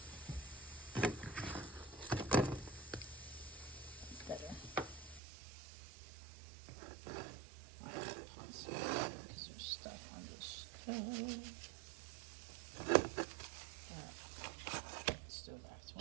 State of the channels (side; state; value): left; drops out; at 5.2 s